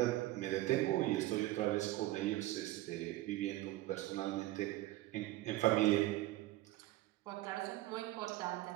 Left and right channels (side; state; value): left; quieter; 16.8 dB